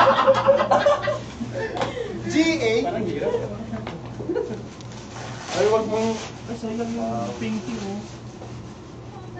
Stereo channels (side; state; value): both; identical; correlation 1.00